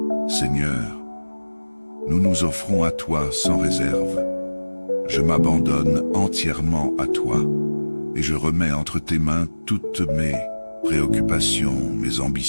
Seigneur, nous nous offrons à toi sans réserve. Je m'abandonne entièrement à toi et je remets entre tes mains toutes mes préoccupations, mes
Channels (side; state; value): both; inverted; correlation -1.00